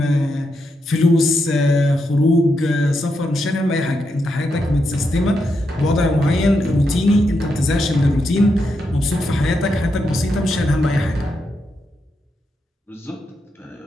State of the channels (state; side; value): normal; both; correlation 0.83